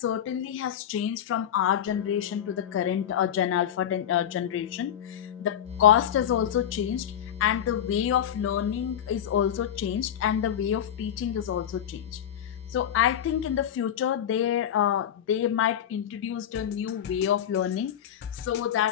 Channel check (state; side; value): quieter; right; 9.8 dB